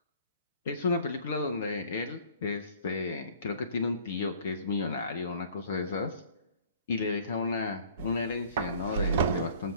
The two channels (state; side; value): inverted; both; correlation -0.52